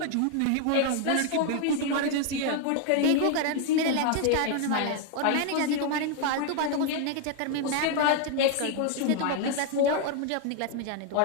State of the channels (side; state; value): both; different; correlation 0.00